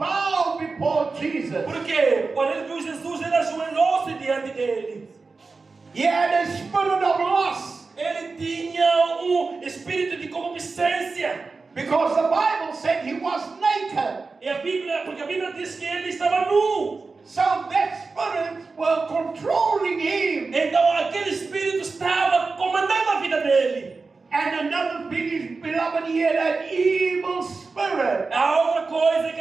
before Jesus. Por quê? Quando ele viu Jesus, ele ajoelhou-se diante dele. He had a spirit of lust. Ele tinha espírito de concupiscência. Because the Bible said he was naked. Porque a Bíblia diz que ele estava nu. So that spirit were controlling him. Então aquele espírito estava comandando a vida dele. And another thing is, beloved, he had an evil spirit. A outra coisa é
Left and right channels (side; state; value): left; quieter; 4.2 dB